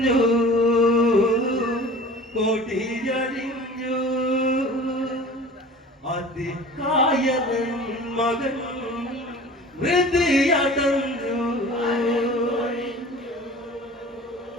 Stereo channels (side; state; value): both; normal; correlation 0.42